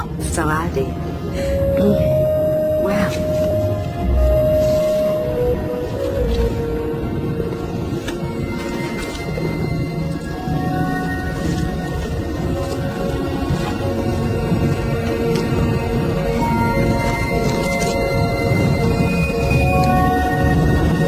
so I did. Well,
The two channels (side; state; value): both; identical; correlation 1.00